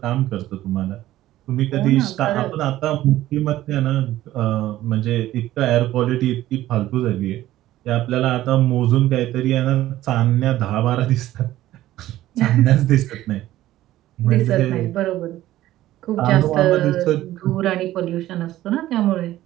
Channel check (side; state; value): left; quieter; 14.7 dB